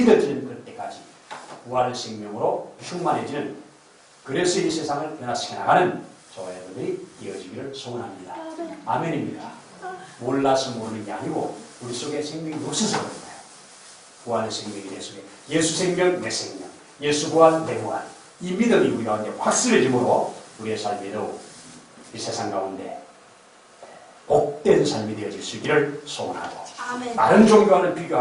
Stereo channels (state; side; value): identical; both; correlation 1.00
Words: 그때까지 부활생명으로 충만해지는, 그래서 이 세상을 변화시켜 나가는 저와 여러분들이 이어지기를 소원합니다. 아멘입니다. 몰라서 모르는 게 아니고 우리 속에 생명이 없어서 그런 거예요. 부활의 생명이 내 속에, 예수 생명 내 생명, 예수 부활 내 부활, 이 믿음이 우리 가운데 확실해짐으로 우리의 삶이 더욱 이 세상 가운데 복된 삶이 되어질 수 있기를 소원하고 아멘. 다른 종교와는